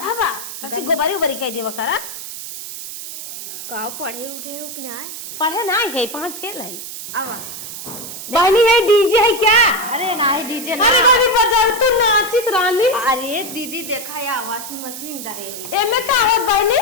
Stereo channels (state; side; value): noise; right; hiss, 9 dB below the sound